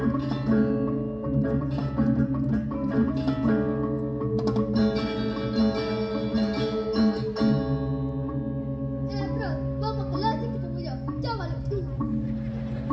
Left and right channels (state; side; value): identical; both; correlation 1.00